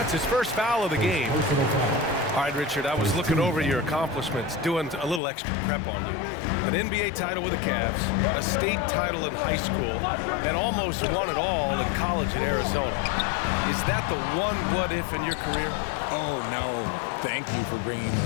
his first foul of the game. All right, Richard, I was looking over your accomplishments, doing a little extra prep on you. An NBA title with the Cavs, a state title in high school, and almost won it all in college at Arizona. Is that the one what-if in your career? Oh, no. Thank you for bringing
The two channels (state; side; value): drops out; right; at 5.2 s